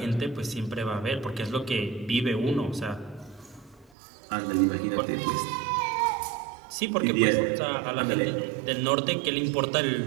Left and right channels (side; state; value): left; drops out; at 3.9 s